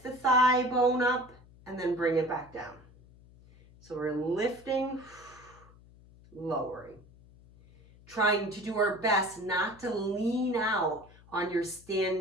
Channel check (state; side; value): noise; left; hum, 24 dB below the sound